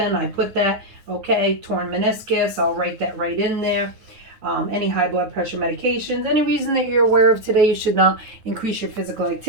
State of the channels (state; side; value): late; left; 9.6 ms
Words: I put that, okay, torn meniscus, I'll write that right in there. Any high blood pressure medications, any reason that you're aware of today you should not increase your physical